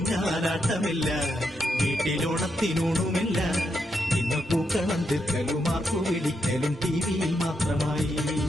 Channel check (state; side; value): normal; both; correlation 0.82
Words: വീട്ടിലോണത്തിനൂണുമില്ല ഇന്ന് പൂക്കളം തീർക്കലും ആർക്കു വിളിക്കലും ടിവിയിൽ മാത്രമായി